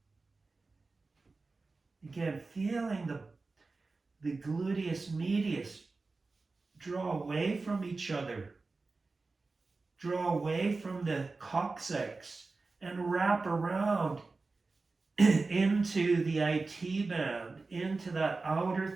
Again, feeling the gluteus medius draw away from each other. Draw away from the coccyx and wrap around into the IT band, into that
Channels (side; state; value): left; quieter; 3.8 dB